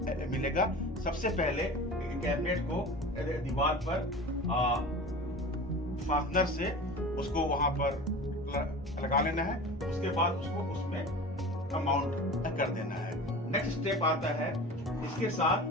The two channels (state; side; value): normal; both; correlation 0.35